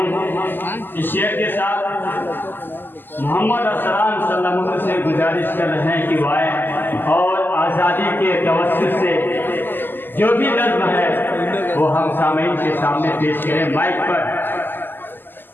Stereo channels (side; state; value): right; late; 0.093 ms